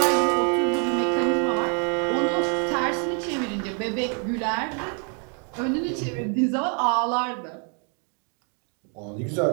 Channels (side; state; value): left; quieter; 39.5 dB